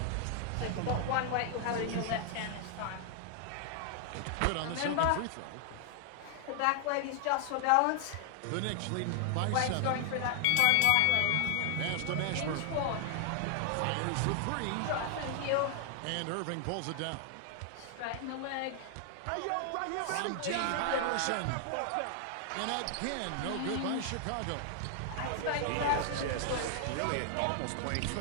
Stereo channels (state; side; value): different; both; correlation 0.00